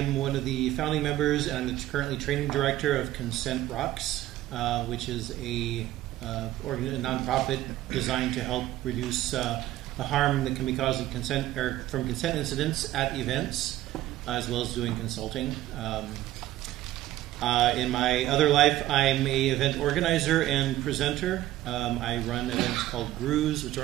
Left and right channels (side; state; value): left; quieter; 14.7 dB